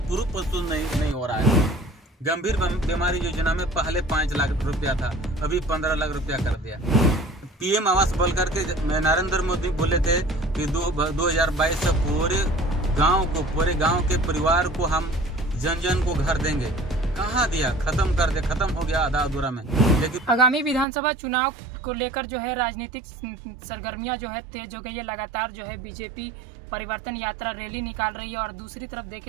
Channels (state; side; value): drops out; left; at 20.9 s